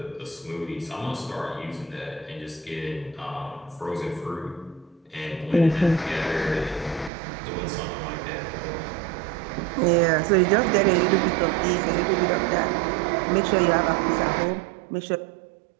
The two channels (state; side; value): drops out; left; at 7.1 s